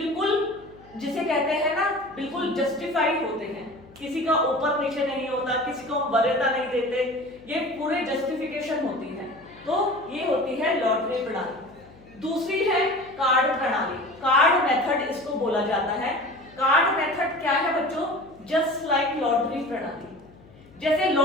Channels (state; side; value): noise; left; hum, 24 dB below the sound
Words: जिसे कहते हैं ना, बिल्कुल जस्टिफाइड होते हैं, किसी का ऊपर नीचे नहीं होता, किसी को वरीयता नहीं देते, ये पूरे जस्टिफिकेशन होती है। तो ये होती है लॉटरी प्रणाली। दूसरी है कार्ड प्रणाली, कार्ड मेथड इसको बोला जाता है। कार्ड मेथड क्या है बच्चों? जस्ट लाइक लॉटरी प्रणाली। जैसे